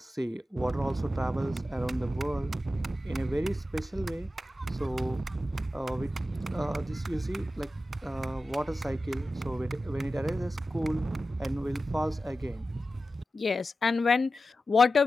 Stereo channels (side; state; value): both; normal; correlation 0.93